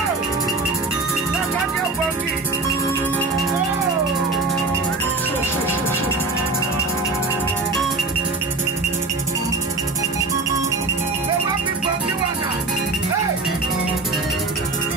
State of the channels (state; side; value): quieter; left; 3.4 dB